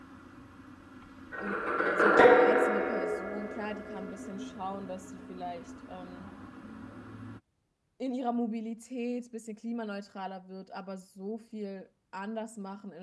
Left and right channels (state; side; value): identical; both; correlation 1.00